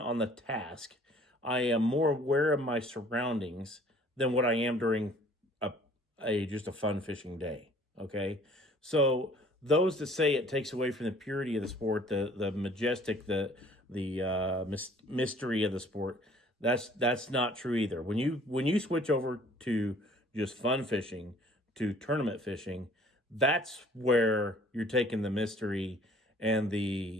the task. I am more aware of my surroundings than what I am during just a fun fishing day. Okay, so those that say it takes away from the purity of the sport, the majestic, the mystery of the sport, that's not true either. When you switch over to just fun fishing to tournament fishing, that's where you're taking the mystery and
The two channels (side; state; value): both; normal; correlation 0.54